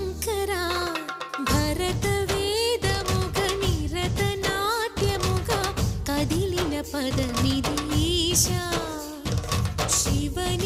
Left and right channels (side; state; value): both; identical; correlation 1.00